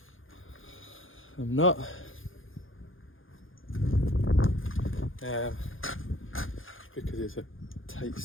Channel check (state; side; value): late; right; 0.58 ms